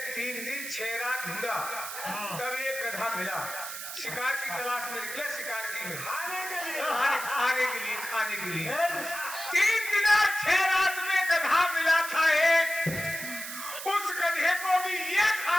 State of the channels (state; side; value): noise; right; hiss, 8 dB below the sound